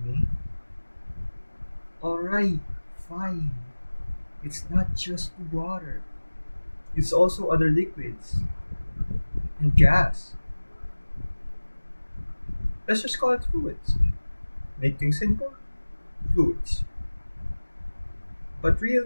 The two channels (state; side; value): inverted; both; correlation -1.00